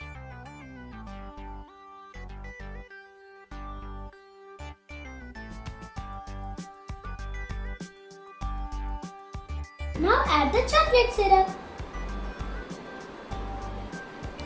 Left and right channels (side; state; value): both; identical; correlation 1.00